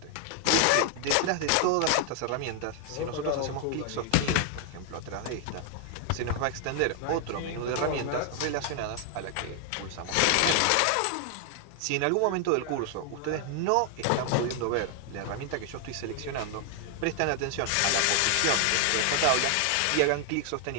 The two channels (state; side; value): different; both; correlation 0.00